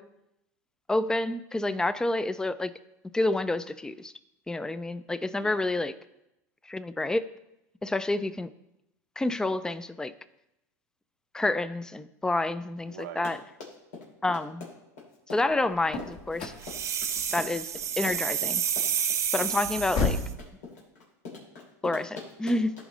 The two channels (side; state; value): both; normal; correlation 0.71